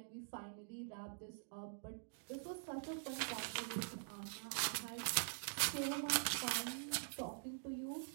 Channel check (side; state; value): left; silent; digital silence